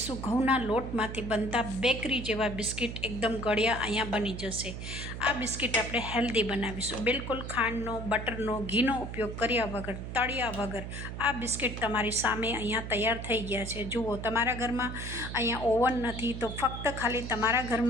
ઘઉંના લોટમાંથી બનતા બેકરી જેવા બિસ્કિટ, એકદમ ગળ્યા અહીંયા બની જશે। આ બિસ્કિટ આપણે હેલ્ધી બનાવીશું, બિલકુલ ખાંડનો, બટરનો, ઘીનો ઉપયોગ કર્યા વગર, તળ્યા વગર આ બિસ્કિટ તમારી સામે અહીંયા તૈયાર થઈ ગયા છે। જુઓ, તમારા ઘરમાં અહીંયા ઓવન નથી તો ફક્ત ખાલી તમારા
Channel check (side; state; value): right; noise; hum, 7 dB below the sound